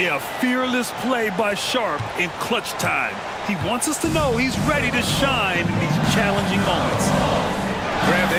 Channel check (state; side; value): identical; both; correlation 1.00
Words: fearless play by Sharp in clutch time. He wants us to know he's ready to shine in these challenging moments. Grant,